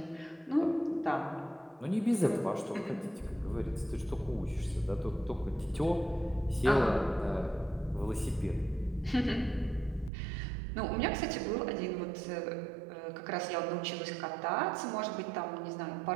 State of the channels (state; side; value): drops out; left; at 10.1 s